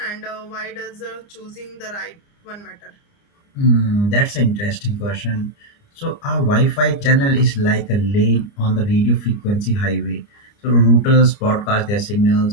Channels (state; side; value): late; right; 29 ms